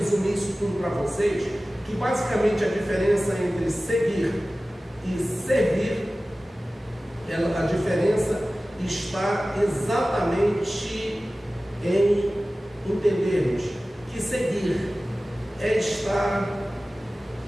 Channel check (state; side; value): normal; both; correlation 0.96